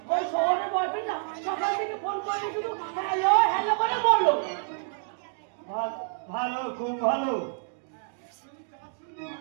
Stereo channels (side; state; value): left; silent; digital silence